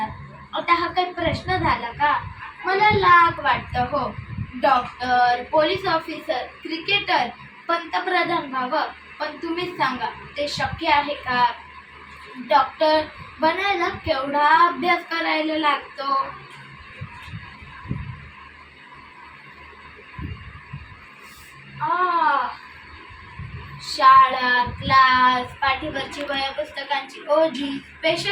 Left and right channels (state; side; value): identical; both; correlation 1.00